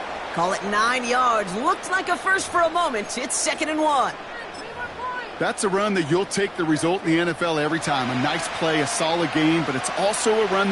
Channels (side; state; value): both; identical; correlation 1.00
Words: Call it 9 yards. Looked like a first for a moment. It's 2nd and 1. That's a run that you'll take the result in the NFL every time. A nice play, a solid game, but it's also a run